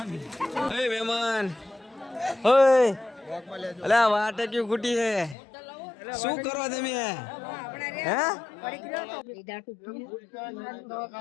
ઓય મહેમાન ઓય અલા વાટે ક્યું ખૂટી હે શું કરો તમે હે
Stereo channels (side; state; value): right; drops out; at 5.4 s